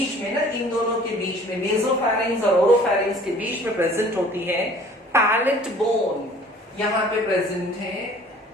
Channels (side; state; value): both; normal; correlation 0.51